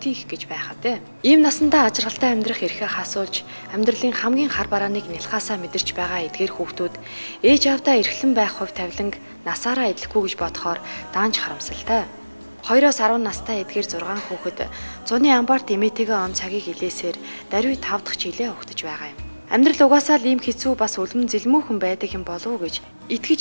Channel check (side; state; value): both; inverted; correlation -1.00